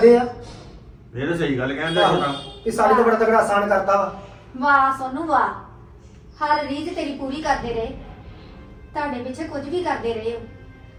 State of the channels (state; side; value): identical; both; correlation 1.00